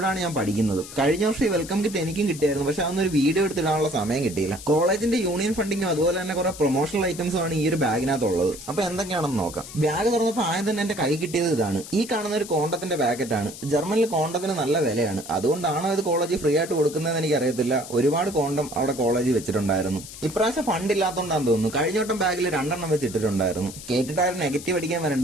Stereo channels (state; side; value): noise; left; hiss, 13 dB below the sound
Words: ഞാൻ പഠിക്കുന്നത്. കഴിഞ്ഞ വർഷം ഈ വെൽക്കം കിറ്റ് എനിക്കും കിട്ടിയായിരുന്നു. പക്ഷെ അതൊന്നൊരു വീഡിയോ എടുത്തിടാനുള്ള സമയം കിട്ടിയില്ല. കോളേജിന്റെ യൂണിയൻ ഫണ്ടിങ്ങും അതുപോലെ തന്നെ കുറെ പ്രൊമോഷണൽ ഐറ്റംസും ആണ് ഈ ഒരു ബാഗിനകത്തുള്ളത്. അപ്പൊ എന്തൊക്കെയാണെന്ന് നോക്കാം. ബാഗ് തുറന്നപ്പോൾ ആദ്യം തന്നെ എന്റെ കൈ കിട്ടിയത് ഇതാണ്. ഈ കാണുന്ന ഒരു കോണ്ടത്തിന്റെ പാക്കറ്റാണ്. ജർമ്മനിൽ കോണ്ടത്തിന് നല്ല വിലയാണ്. അതുകൊണ്ടാണോ ഇത് കോളേജിൽ ഫ്രീ ആയിട്ട് കൊടുക്കുന്നതെന്ന് എനിക്ക് അറിയത്തില്ല. ഒരുപാട് കോണ്ടം അവിടെ കോളേജിൽ വെച്ചിട്ടുണ്ടായിരുന്നു. ഇപ്രാവശ്യം ഫണ്ട് ഇല്ലാത്തതുകൊണ്ടാന്ന് തോന്നുന്നു. കഴിഞ്ഞ വട്ടം ബാഗിൽ 2 വെച്ചിട്ടുണ്ടായിരുന്നു. കേട്ടിട്ടാരും നെഗറ്റീവ് അടിക്കാൻ